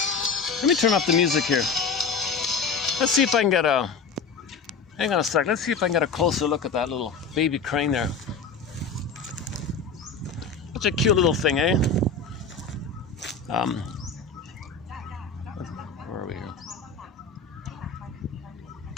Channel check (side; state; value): right; quieter; 4.9 dB